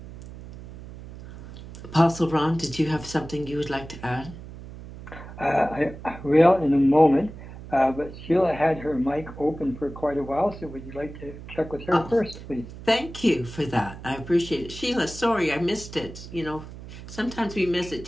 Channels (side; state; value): right; noise; hum, 14 dB below the sound